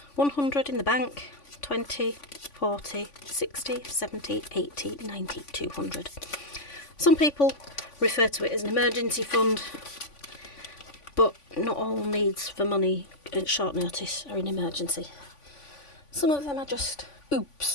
100 in the bank, 20, 40, 60, 70, 80, 90, 200. Some people refer to it as an emergency fund, but not all needs for money at short notice are an emergency. Some of them are just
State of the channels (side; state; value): right; late; 3.5 ms